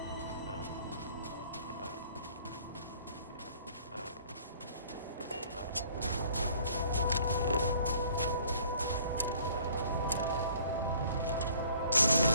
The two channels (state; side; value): inverted; both; correlation -0.55